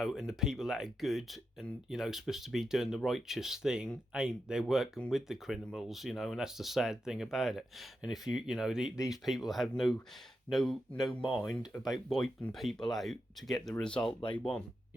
and the people that are good and, you know, supposed to be doing the righteous thing ain't. They're working with the criminals, you know, and that's the sad thing about it. And if you know, these people have no mind about wiping people out to get the result they want,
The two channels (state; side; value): normal; both; correlation 0.88